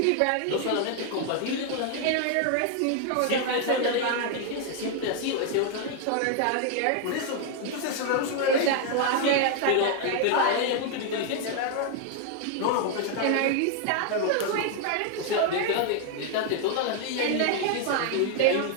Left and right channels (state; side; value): different; both; correlation 0.00